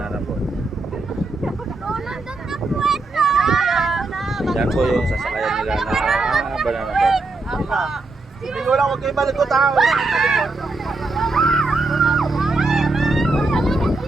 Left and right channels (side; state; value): left; quieter; 3.4 dB